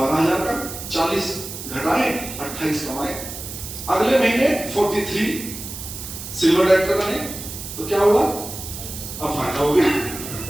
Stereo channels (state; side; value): noise; right; hiss, 10 dB below the sound